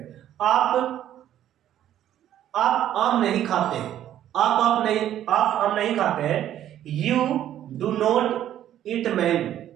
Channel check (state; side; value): quieter; left; 11.5 dB